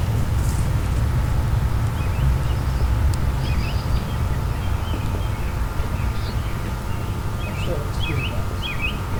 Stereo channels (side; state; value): both; identical; correlation 1.00